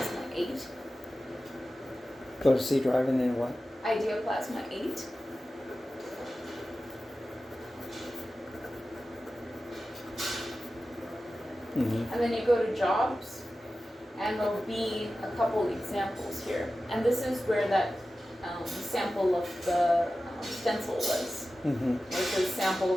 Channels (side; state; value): both; normal; correlation 0.94